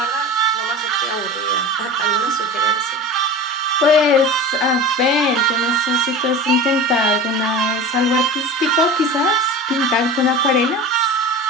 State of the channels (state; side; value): normal; both; correlation 0.33